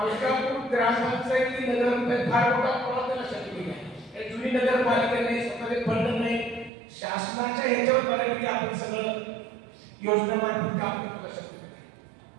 ग्रामपंचायती नगर फार मोठा प्रवाह त्याला शक्य नाही. जुनी नगरपालिका नाही, स्वतःचे फंड नाही, शासनाच्या ह्याच्यावर बऱ्यापैकी आपण सगळं योजनामार्फत काम करू शकतो.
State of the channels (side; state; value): left; drops out; at 6.7 s